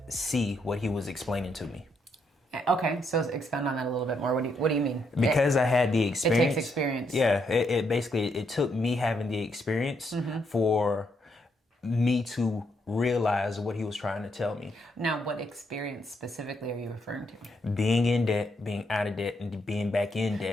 see what he was explaining to me. Okay, so expound on that a little bit more. What do you mean? Because I had the experience. It takes experience. Yeah, it basically, it took me having the experience for me to realize what he was trying to tell me. Now, what experience specifically are you referring to? Being in debt, being out of debt, and being back in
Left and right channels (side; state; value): both; normal; correlation 0.77